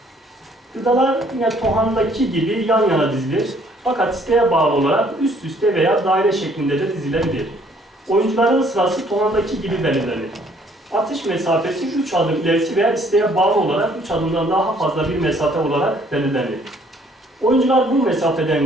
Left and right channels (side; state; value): both; normal; correlation 0.62